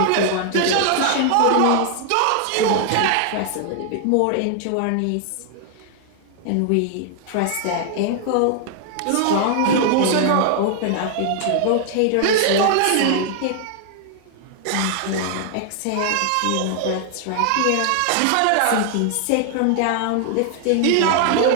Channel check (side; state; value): both; different; correlation 0.00